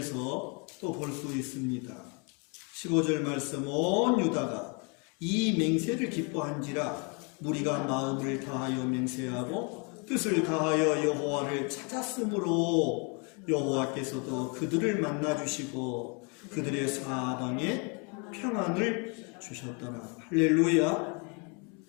또 볼 수 있습니다. 15절 말씀, 온 유다가 이 맹세를 기뻐한지라 무리가 마음을 다하여 맹세하고 뜻을 다하여 여호와를 찾았으므로 여호와께서도 그들을 만나주시고 그들의 사방에 평안을 주셨더라. 할렐루야.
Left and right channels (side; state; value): right; quieter; 34.4 dB